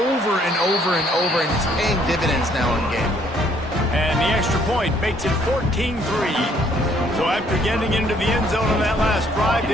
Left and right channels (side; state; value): both; normal; correlation 0.64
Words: and over and over, and it's paying dividends now in game. And the extra point makes it 14-3. So after getting into the end zone on that last drive,